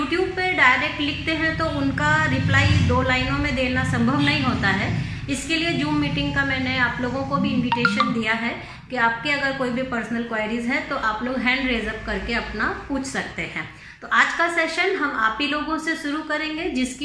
पे डायरेक्ट लिखते हैं तो उनका रिप्लाई 2 लाइनों में देना संभव नहीं होता है। इसके लिए जूम मीटिंग का मैंने आप लोगों को भी इन्विटेशन दिया है कि आपके अगर कोई भी पर्सनल क्वेरीज है तो आप लोग हैंड रेज अप करके अपना पूछ सकते हैं। तो आज का सेशन हम आप ही लोगों से शुरू करेंगे,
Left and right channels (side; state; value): both; identical; correlation 1.00